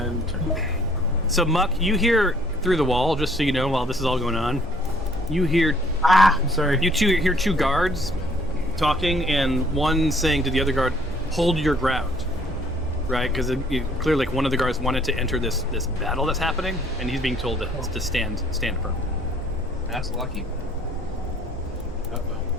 turn. So Muck, you hear through the wall, just so you know, while this is all going on, you hear I'm sorry. you hear two guards talking, and one saying to the other guard, "Hold your ground," right? Because clearly, like, one of the guards wanted to enter this battle that's happening, and he's being told to stand firm. That's lucky. Uh-oh.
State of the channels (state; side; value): normal; both; correlation 0.61